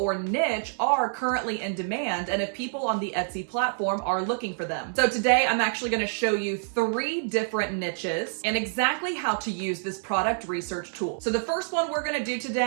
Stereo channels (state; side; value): silent; left; 60 dB below the other